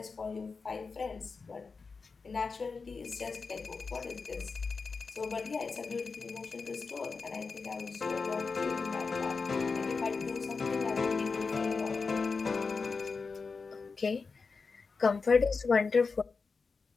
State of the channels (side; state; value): right; quieter; 4.7 dB